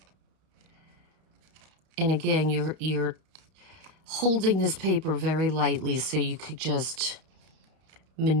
And again, you're holding this paper very lightly so you could just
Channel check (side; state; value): left; late; 31 ms